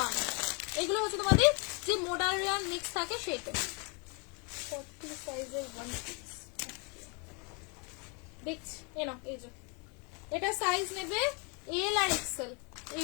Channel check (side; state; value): right; quieter; 33.6 dB